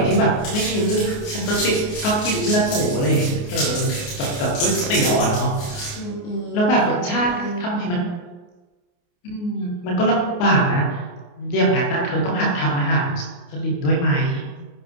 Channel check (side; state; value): right; late; 29 ms